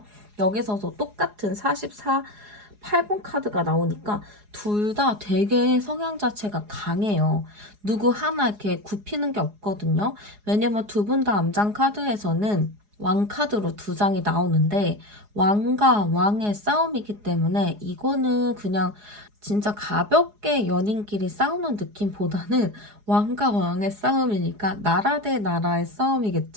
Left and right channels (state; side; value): late; left; 4.8 ms